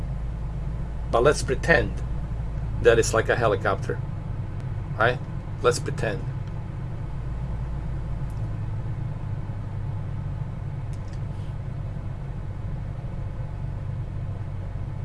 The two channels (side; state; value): both; identical; correlation 1.00